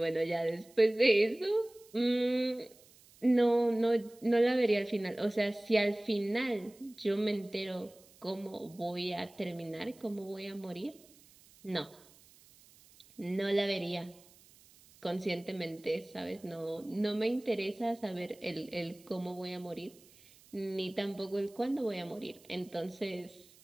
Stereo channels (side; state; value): right; noise; hiss, 26 dB below the sound